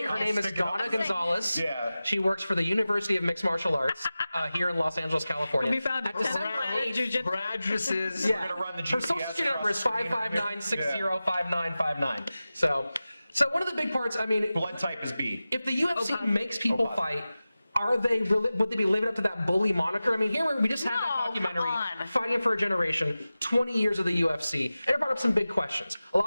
Nate, her yes. name is Stick it up. Donna I'm saying- Gonzalez. Yeah. She works for the University of Mixed Martial Arts here in Los Angeles, California. Will be found At at December Teperman 8th, Jiu-Jitsu. Her address is yeah. gonna run the Her social GPS security number is across the screen. 559605959. So one of the big parts, I mean, Blood type is B. if the UFC Okay. makes people Okay. fight, would they be living up to that bully moniker? I mean, here we just had that No, documentary, come on. Fighting for a Generation, 20 years of the UFC, and it brought up some big questions. A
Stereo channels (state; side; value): inverted; both; correlation -0.95